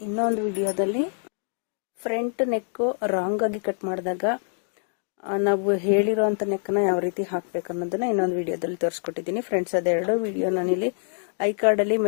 ಇನ್ನೊಂದು ವಿಡಿಯೋದಲ್ಲಿ ಫ್ರಂಟ್ ನೆಕ್ಕು ರಾಂಗ್ ಆಗಿ ಕಟ್ ಮಾಡಿದಾಗ ನಾವು ಹೇಳಿರೋಂಥ ನೆಕ್ಕನ್ನ ಯಾವ ರೀತಿ ಹಾಕಬೇಕು ಅನ್ನೋದನ್ನ ಇನ್ನೊಂದು ವಿಡಿಯೋದಲ್ಲಿ ತೋರಿಸ್ಕೊಟ್ಟಿದ್ದೀನಿ. ಫ್ರೆಂಡ್ಸ್, ಅದೆರಡು ವಿಡಿಯೋ ನಾನಿಲ್ಲಿ ಐ ಕಾರ್ಡಲ್ಲಿ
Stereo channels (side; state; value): right; silent; digital silence